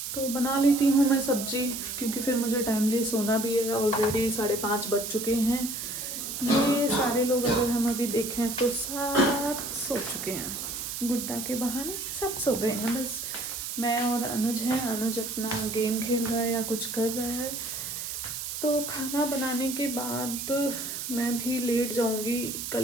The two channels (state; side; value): noise; right; hiss, 5 dB below the sound